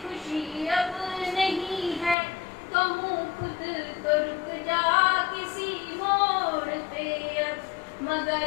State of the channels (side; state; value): right; drops out; at 2.1 s